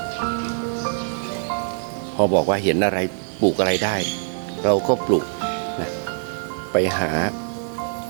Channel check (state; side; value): silent; left; digital silence